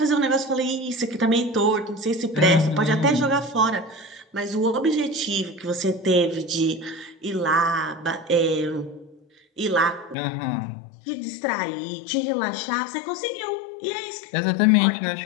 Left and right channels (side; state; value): right; drops out; at 10.2 s